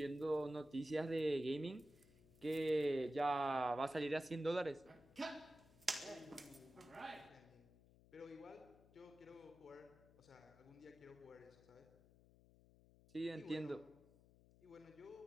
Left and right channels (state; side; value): noise; left; hum, 24 dB below the sound